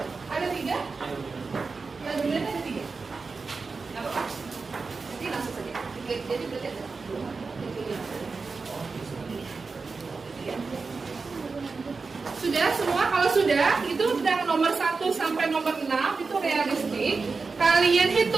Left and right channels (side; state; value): left; quieter; 4.4 dB